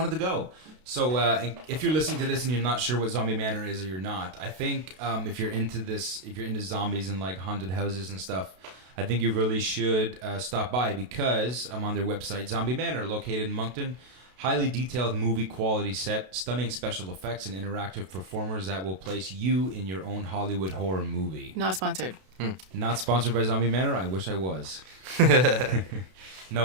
to go. So and if you're listening to this and you're not sure what Zombie Manor is or you're not, I think if you're into zombies and like haunted houses and stuff, I think you really should stop by because I'm on their website, Zombie Manor, located in Moncton. Highly detailed movie quality set, stunning special effects, and interactive performers that will place you in your own Hollywood horror movie. Not sponsored. Not sponsored by Zombie Manor. I wish I was.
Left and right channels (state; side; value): late; left; 32 ms